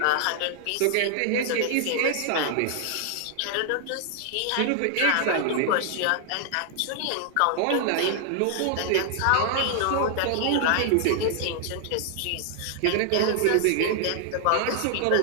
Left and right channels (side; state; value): both; different; correlation -0.01